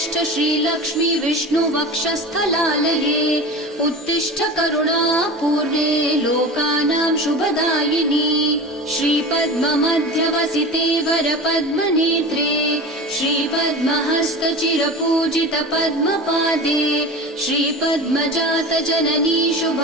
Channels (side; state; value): both; normal; correlation 0.32